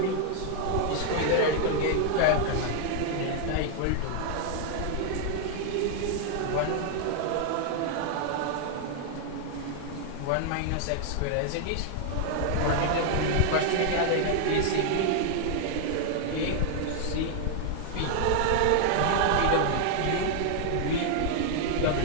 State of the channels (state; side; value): different; both; correlation 0.00